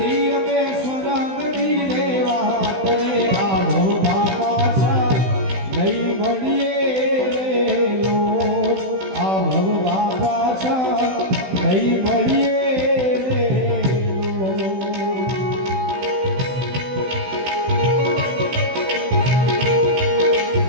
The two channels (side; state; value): left; late; 16 ms